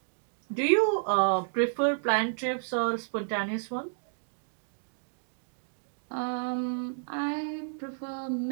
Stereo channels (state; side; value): silent; left; digital silence